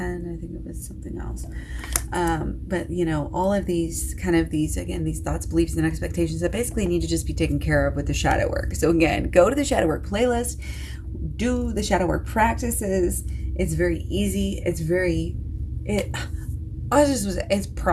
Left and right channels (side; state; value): both; identical; correlation 1.00